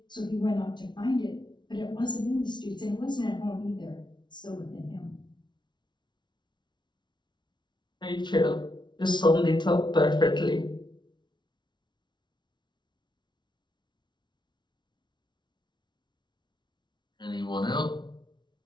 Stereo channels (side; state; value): right; late; 0.22 ms